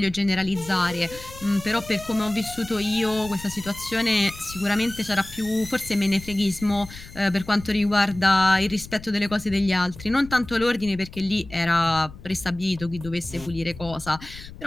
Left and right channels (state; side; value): noise; left; rumble, 16 dB below the sound